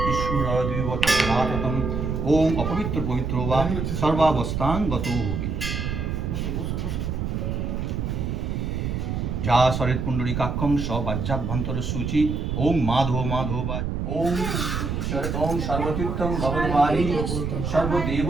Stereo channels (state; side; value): noise; right; rumble, 2 dB below the sound